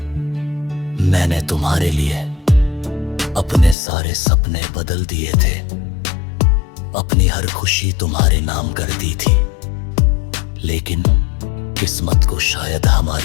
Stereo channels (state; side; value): drops out; right; at 3.8 s